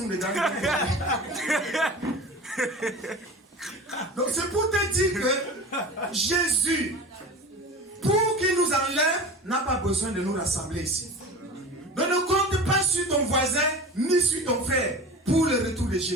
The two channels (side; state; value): both; normal; correlation 0.34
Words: dedans. Donc c'est pour te dire que Jésus, pour qu'il nous enlève, n'a pas besoin de nous rassembler ici. Donc ne compte pas sur ton voisin, ni sur ton frère, pour le retour de